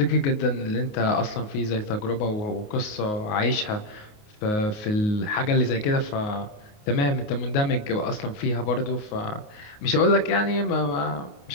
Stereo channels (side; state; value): right; late; 28 ms